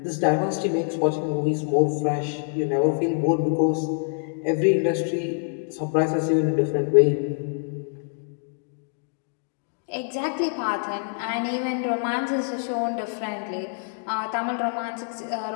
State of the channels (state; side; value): silent; right; 61 dB below the other